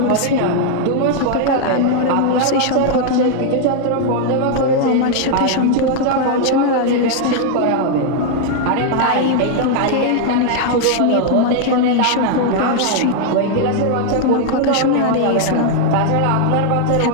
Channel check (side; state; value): both; different; correlation 0.00